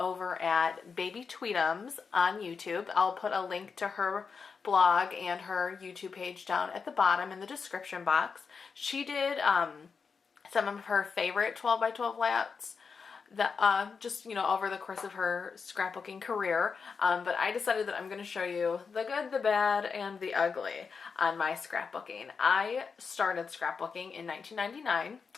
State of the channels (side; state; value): right; quieter; 5.4 dB